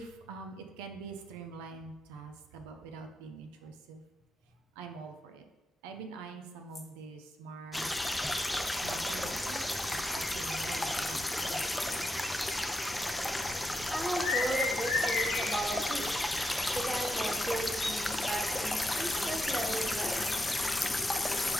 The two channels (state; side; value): normal; both; correlation 0.84